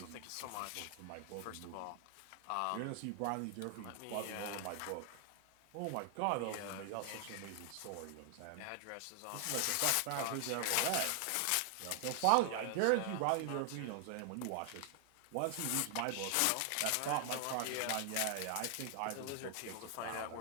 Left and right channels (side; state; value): both; different; correlation 0.00